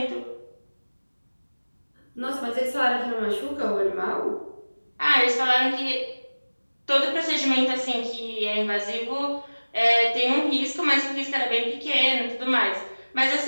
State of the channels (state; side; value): inverted; both; correlation -1.00